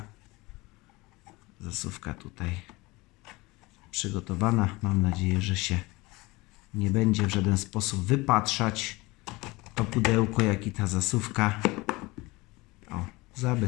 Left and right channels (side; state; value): right; quieter; 22.6 dB